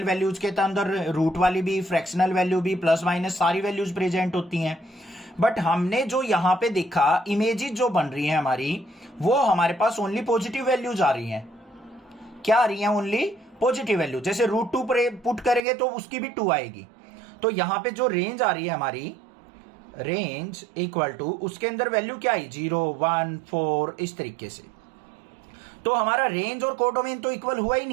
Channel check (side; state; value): left; drops out; at 15.6 s